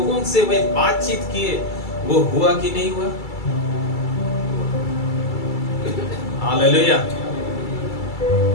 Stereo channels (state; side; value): late; right; 2.3 ms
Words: से वे बातचीत किए, वो हुआ कि नहीं हुआ? हालेलुया।